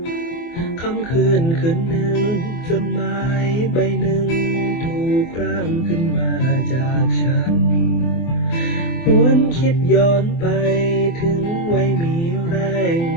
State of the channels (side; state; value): right; late; 24 ms